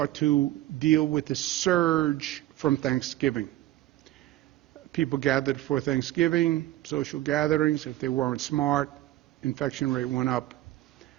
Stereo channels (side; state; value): left; quieter; 15.2 dB